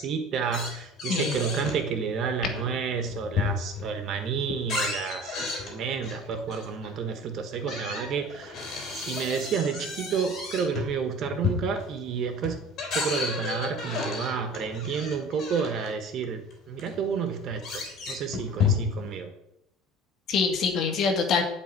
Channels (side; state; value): both; normal; correlation 0.41